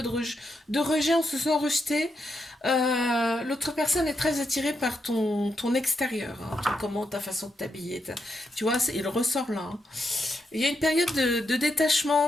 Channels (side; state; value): both; normal; correlation 0.83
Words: de rejet, on se sent rejeté. L'autre personne est très attirée par ton extérieur, hein, ta façon de t'habiller. Tu vois, il ressort là, hein. Il y a une période de